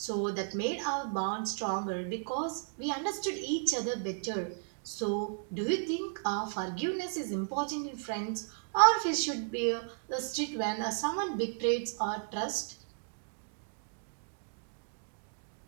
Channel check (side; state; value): left; silent; digital silence